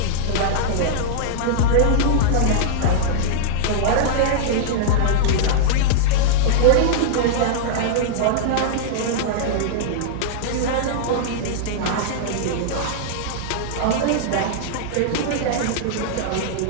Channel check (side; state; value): both; different; correlation -0.02